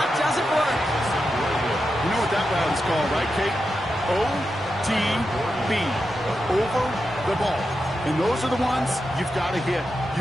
doesn't work. You know what that route is called, right, Kate? OTB. Over the ball. And those are the ones you've got to hit.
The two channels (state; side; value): normal; both; correlation 0.88